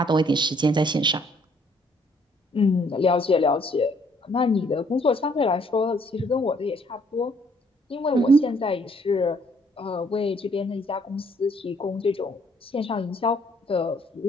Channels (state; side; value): normal; both; correlation 0.65